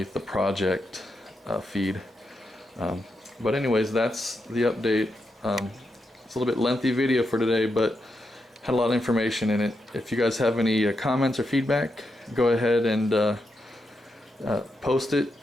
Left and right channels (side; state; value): both; normal; correlation 0.84